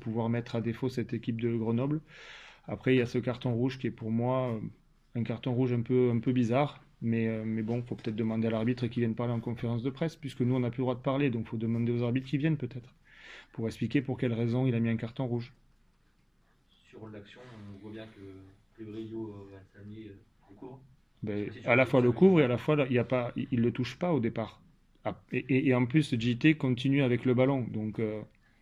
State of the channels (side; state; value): both; identical; correlation 1.00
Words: mettre à défaut cette équipe de Grenoble. Après, il y a ce carton rouge qui est pour moi un carton rouge un peu bizarre. Mais bon, il faut peut-être demander à l'arbitre qui vienne parler en conférence de presse, puisque nous, on n'a plus le droit de parler. Donc, il faut demander aux arbitres qui viennent peut-être, pour expliquer pour quelle raison il a mis un carton rouge. Sur l'action, on voit bien que Brio Valsani le court. Je sais Ben, pas si tu à as la vu fois le ça, mais couvre et à la fois il y a pas, il le touche pas au départ. Ah, et en plus, JT continue avec le ballon. Donc